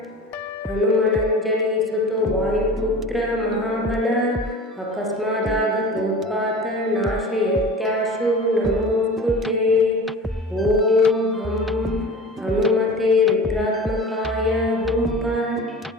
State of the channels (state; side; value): normal; both; correlation 0.38